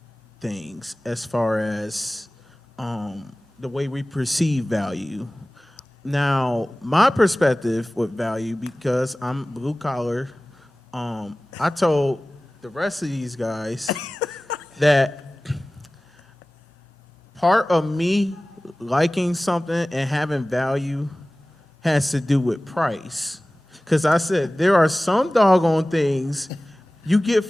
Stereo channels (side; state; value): both; normal; correlation 0.98